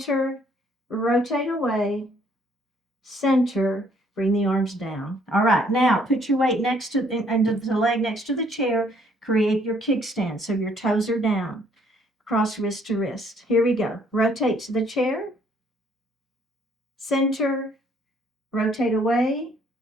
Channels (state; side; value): normal; both; correlation 0.64